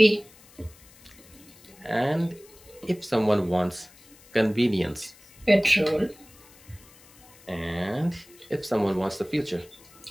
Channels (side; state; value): left; noise; hiss, 25 dB below the sound